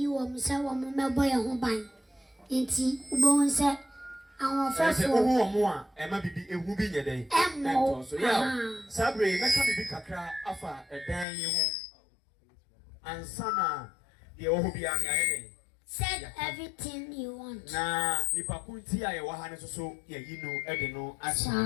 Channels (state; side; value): drops out; right; at 11.2 s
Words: are Missa Wamma boy and Hoban. Inti, Ubon said, our first more, Emma be a whooping a day. So, yeah, Sabri, let me be Kakra, Afa, a day, and Sana, the Obiani. Said everything you want. Na, Nipakunti, I was so, yeah, you know, Edino,